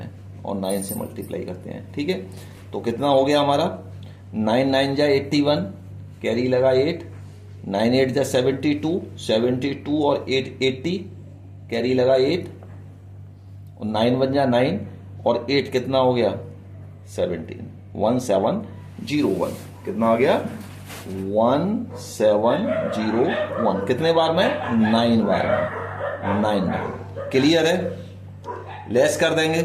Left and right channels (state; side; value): identical; both; correlation 1.00